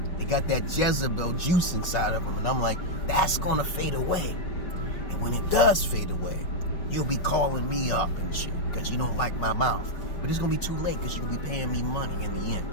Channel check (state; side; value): late; right; 5.5 ms